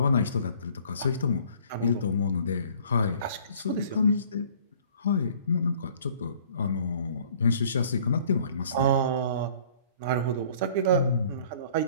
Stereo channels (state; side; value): inverted; both; correlation -0.54